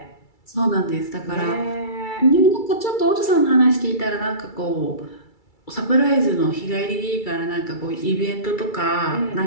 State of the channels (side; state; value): right; late; 2.3 ms